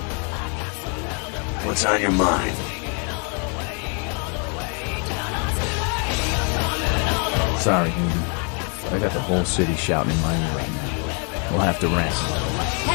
What's on your mind? Sorry, Newton. I got the whole city shouting in my ear right now. We'll have to rest.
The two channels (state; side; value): quieter; right; 37.9 dB